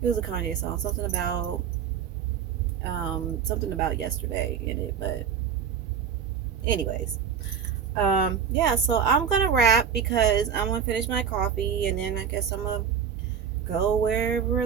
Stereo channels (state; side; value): quieter; left; 7.5 dB